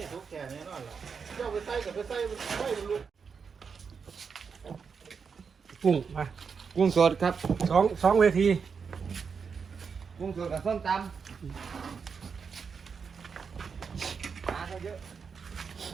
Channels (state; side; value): quieter; left; 5.9 dB